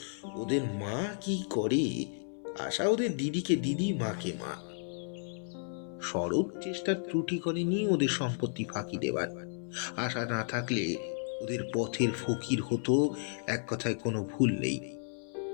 ওদের মা কি করে, আশা ওদের দিদিকে দিদি, মাকে মা। শরৎ চেষ্টার ত্রুটি করেনি ওদের সম্পত্তি ফাঁকি দেবার। আশা না থাকলে ওদের পথের ফকির হতো, এক কথায় কোনো ভুল নেই।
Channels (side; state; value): right; silent; 56 dB below the other